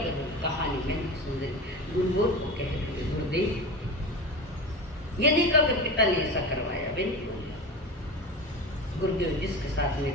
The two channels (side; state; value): both; normal; correlation 0.28